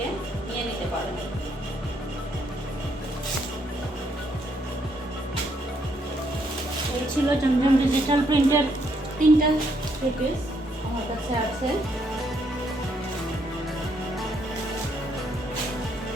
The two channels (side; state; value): both; normal; correlation 0.73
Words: নিয়ে নিতে পারেন। ছিল জমজম ডিজিটাল প্রিন্টের 3টা থ্রি পিস আমার কাছে আছে।